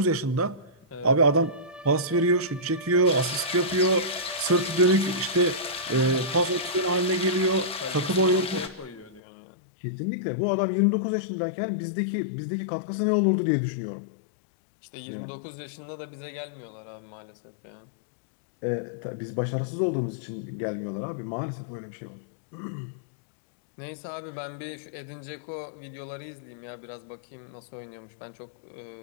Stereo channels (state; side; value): drops out; right; at 9.2 s